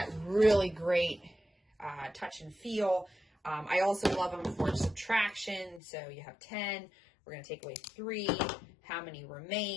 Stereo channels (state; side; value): drops out; right; at 5.8 s